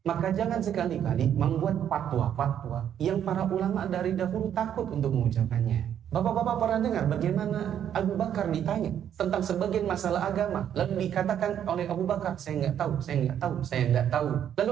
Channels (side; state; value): left; quieter; 9.6 dB